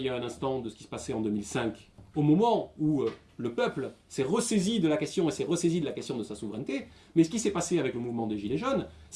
y a un instant de ce qui se passait en 2005, au moment où le peuple s'est ressaisi de la question et s'est ressaisi de la question de sa souveraineté, mais ce qui s'est passé avec le mouvement des Gilets jaunes,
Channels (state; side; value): identical; both; correlation 1.00